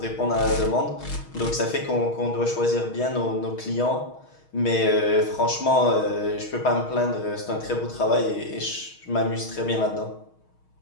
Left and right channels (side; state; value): right; late; 6.4 ms